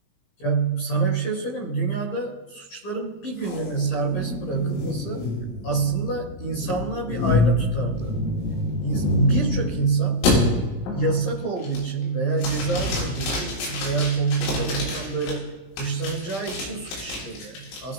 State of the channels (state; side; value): late; right; 17 ms